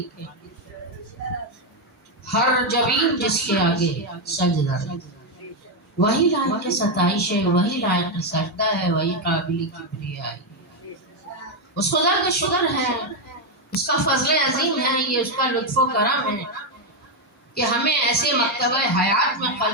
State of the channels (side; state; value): both; normal; correlation 0.04